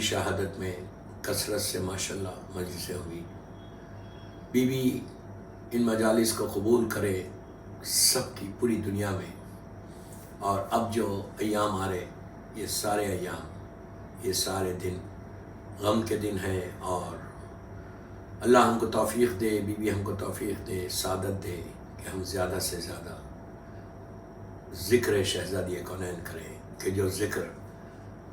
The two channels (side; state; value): both; identical; correlation 1.00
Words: شہادت میں کثرت سے ماشاءاللہ مجلسیں ہوئی. بی بی ان مجالس کو قبول کرے سب کی پوری دنیا میں. اور اب جو ایام آ رہے، یہ سارے ایام، یہ سارے دن غم کے دن ہیں. اور اللہ ہم کو توفیق دے، بی بی ہم کو توفیق دے، سعادت دے کہ ہم زیادہ سے زیادہ ذکر شہزادی کونین کریں. کہ جو ذکر